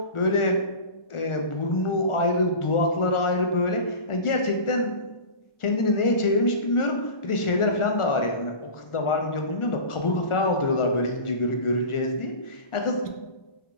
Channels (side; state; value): right; late; 1.4 ms